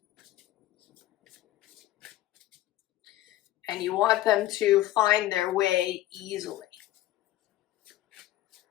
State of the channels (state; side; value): quieter; right; 14.7 dB